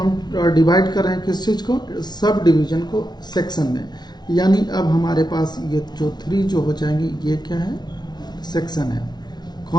डिवाइड कर रहे हैं किस चीज को, सब डिवीजन को सेक्शन में। यानी अब हमारे पास ये जो 3 जो हो जाएंगे ये क्या है, सेक्शन है।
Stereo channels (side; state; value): right; late; 0.21 ms